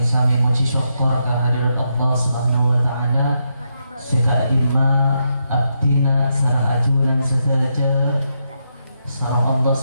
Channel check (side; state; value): both; inverted; correlation -0.82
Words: muji syukur kehadirat Allah Subhanahu wa taala. Sega adima abdina sareng ajunan sedaja sareng Allah